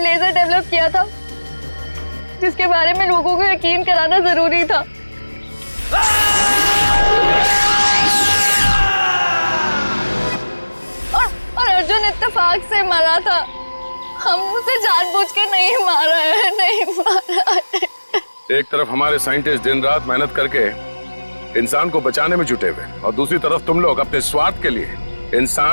लेजर डेवलप किया था जिसके बारे में लोगों को यकीन कराना जरूरी था। और अर्जुन इत्तेफाक से मरा था। हम उसे जानबूझ के नहीं मारा है, नहीं मारा है। एक तरफ हमारे साइंटिस्ट दिन रात मेहनत करके इंसान को बचाने में जुटे हुए और दूसरी तरफ तुम लोग अपने स्वार्थ के लिए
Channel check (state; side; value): inverted; both; correlation -1.00